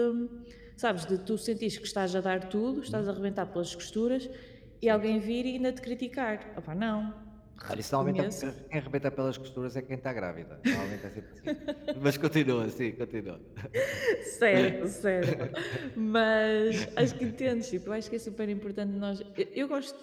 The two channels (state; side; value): identical; both; correlation 1.00